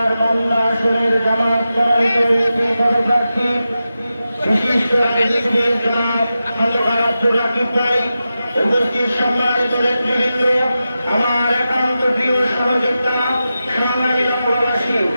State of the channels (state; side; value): inverted; both; correlation -0.92